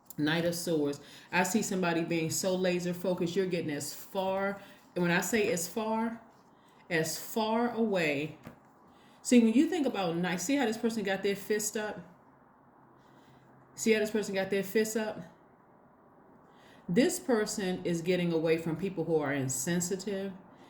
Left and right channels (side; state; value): both; identical; correlation 1.00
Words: Knight of Swords. I see somebody being so laser focused, you're getting as far, and when I say as far away. See, when you think about knight, see how this person got their fist up? This person is getting away from people who are insensitive,